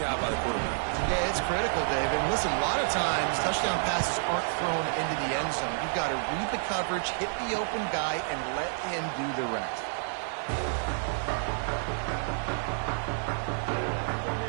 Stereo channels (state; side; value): silent; left; digital silence